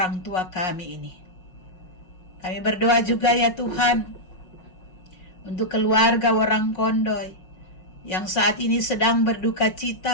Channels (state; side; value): late; right; 5.5 ms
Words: tua kami ini. Kami berdoa juga ya Tuhan untuk keluarga Warang Kondoy yang saat ini sedang berduka